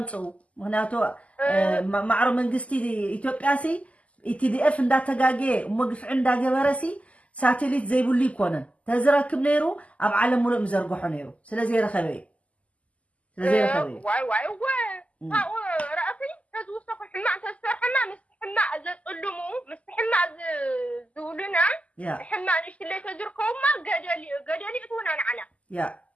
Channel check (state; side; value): late; right; 0.067 ms